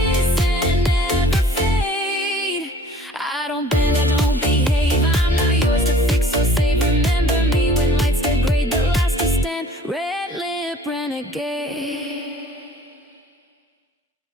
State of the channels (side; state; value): both; normal; correlation 0.52